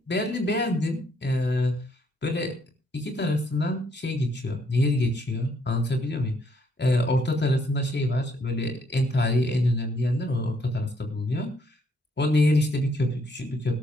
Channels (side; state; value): both; normal; correlation 0.70